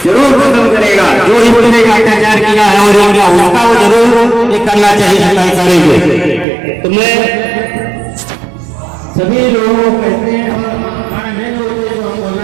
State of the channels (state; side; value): drops out; left; at 6.5 s